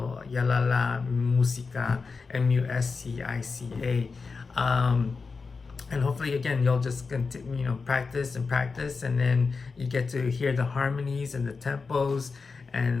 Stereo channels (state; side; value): quieter; right; 4.6 dB